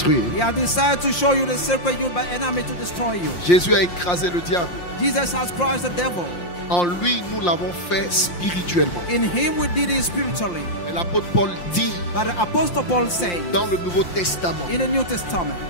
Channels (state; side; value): late; right; 5.7 ms